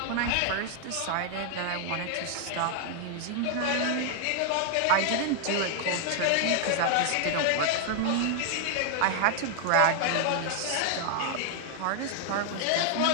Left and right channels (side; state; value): both; different; correlation 0.00